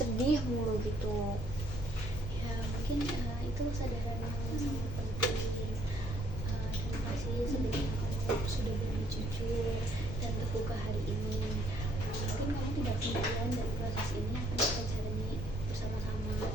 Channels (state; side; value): normal; both; correlation 0.66